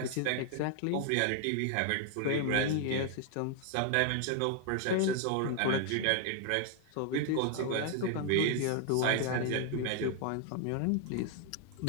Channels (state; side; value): different; both; correlation 0.00